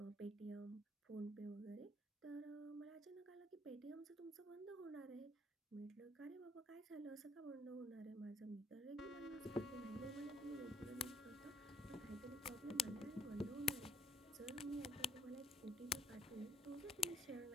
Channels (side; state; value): both; normal; correlation 0.64